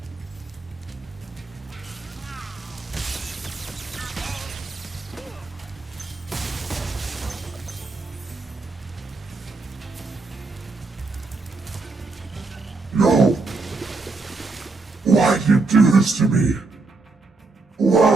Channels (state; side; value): quieter; left; 3.7 dB